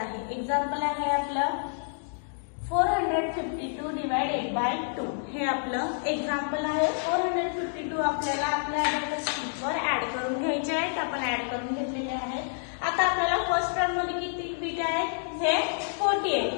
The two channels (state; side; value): silent; right; digital silence